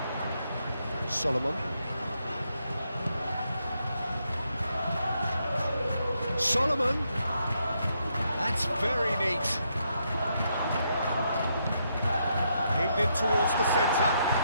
Solomon. Solomon. That's very neat. Aimed in towards the centre.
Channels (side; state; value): both; inverted; correlation -0.78